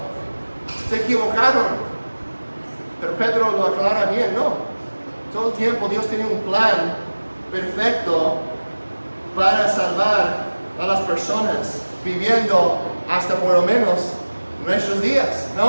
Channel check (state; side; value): inverted; both; correlation -1.00